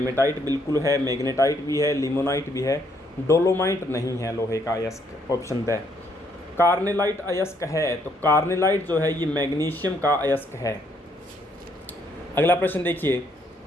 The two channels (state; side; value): normal; both; correlation 0.70